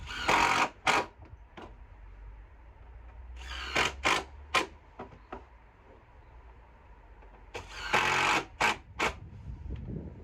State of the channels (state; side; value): identical; both; correlation 1.00